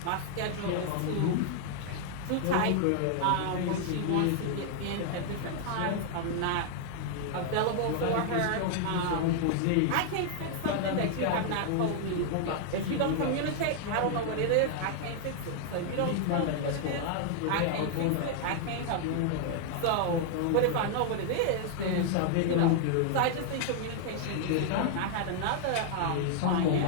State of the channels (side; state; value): both; different; correlation 0.00